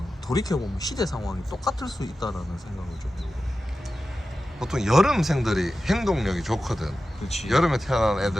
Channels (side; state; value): both; normal; correlation 0.93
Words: 돌이켜보면 시대 상황이 똑같을 수 있다라는 생각을 좀 해요. 보통 여름생들이 행동력이 좋거든. 그렇지. 여름에 태어난